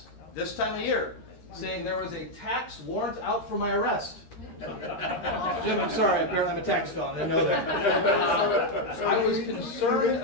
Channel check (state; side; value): late; right; 13 ms